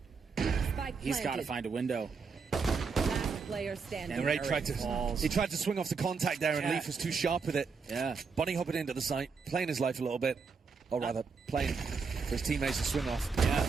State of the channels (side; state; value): left; quieter; 5.1 dB